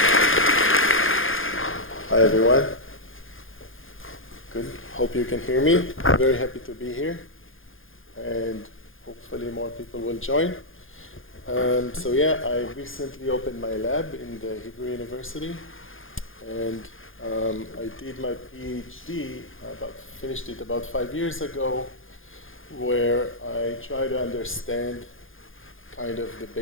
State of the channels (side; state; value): right; late; 0.59 ms